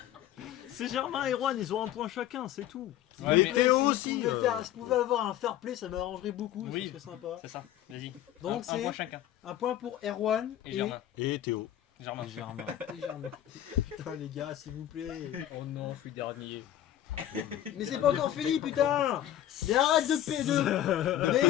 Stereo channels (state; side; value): quieter; right; 12.3 dB